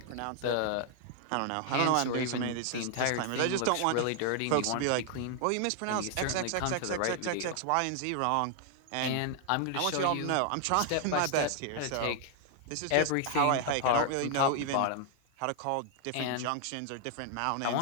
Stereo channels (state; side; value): different; both; correlation 0.00